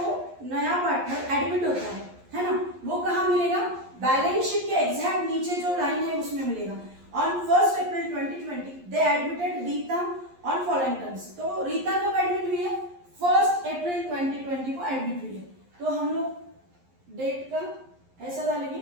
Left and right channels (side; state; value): left; late; 11 ms